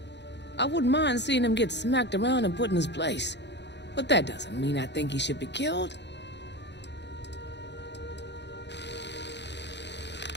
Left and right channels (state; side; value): late; right; 0.51 ms